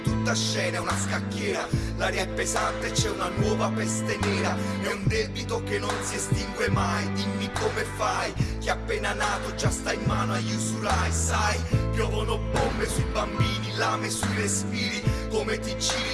tutta scena, è una scacchiera. L'aria è pesante e c'è una nuova peste nera. È un debito che non si estingue mai. Dimmi come fai, che appena nato già sta in mano agli usurai. Sai, piovono bombe sui bambini, lame sui respiri. Come ti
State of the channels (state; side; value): identical; both; correlation 1.00